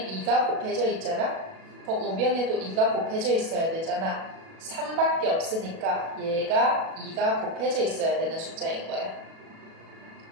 2가 곱해져 있잖아? 우변에도 2가 곱해져 있어야 되잖아. 3밖에 없으니까 얘가 2가 곱해져 있어야 되는 숫자인 거야.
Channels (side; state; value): left; late; 37 ms